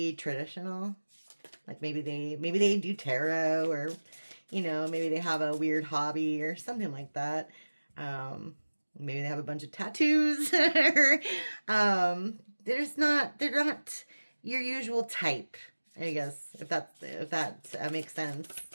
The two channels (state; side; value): inverted; both; correlation -1.00